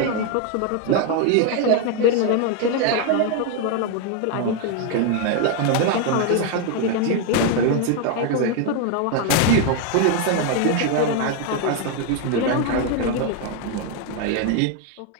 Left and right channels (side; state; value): both; different; correlation 0.01